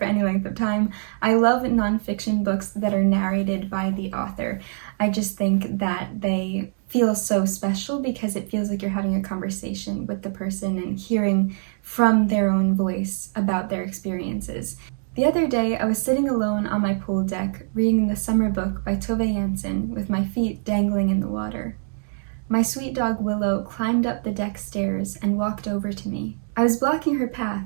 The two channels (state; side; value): silent; left; digital silence